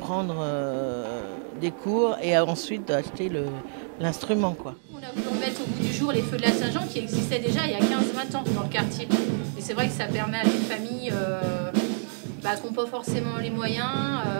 prendre des cours et ensuite d'acheter l'instrument, quoi. On a voulu remettre au bout du jour les feux de la Saint-Jean qui existaient déjà il y a 15-20 ans dans le quartier. Et c'est vrai que ça permet à des familles qui n'ont pas forcément les moyens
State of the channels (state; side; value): silent; left; digital silence